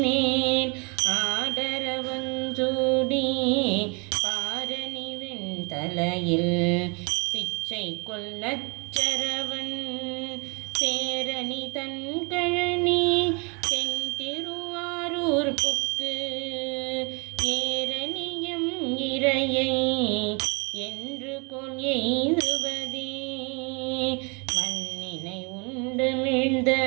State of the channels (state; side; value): quieter; left; 32.9 dB